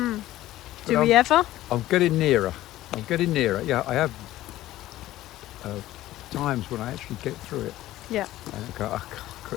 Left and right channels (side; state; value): right; quieter; 15.2 dB